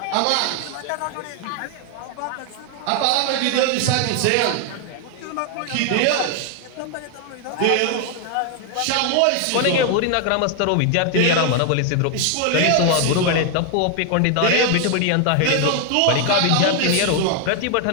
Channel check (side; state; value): both; different; correlation 0.00